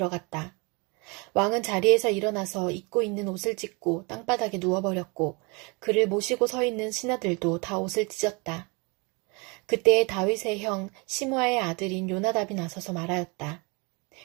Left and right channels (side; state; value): left; quieter; 29.5 dB